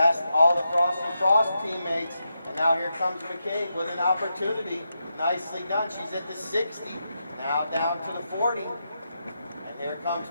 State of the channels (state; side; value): inverted; both; correlation -0.86